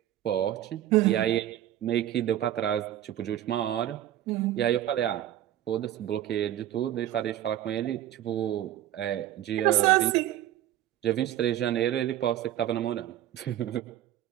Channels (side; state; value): left; quieter; 12.5 dB